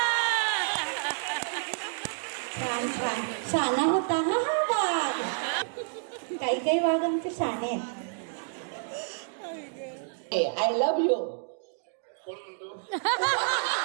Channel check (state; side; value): silent; left; digital silence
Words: छान छान शाना होता हा हा वाघ. काही काही वाघ आमचे शाणे आहेत. I love you. कोण म्हणतो?